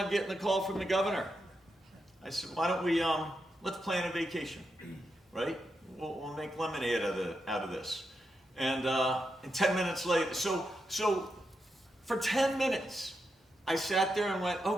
getting a call from the governor. I said, why don't we, let's plan a vacation, right? We'll make lemonade out of this. And 10 minutes later, so for 10 minutes, I sat there and went,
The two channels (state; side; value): normal; both; correlation 0.85